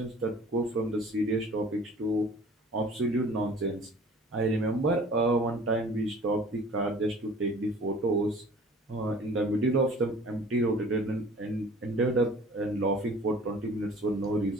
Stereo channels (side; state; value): both; normal; correlation 0.47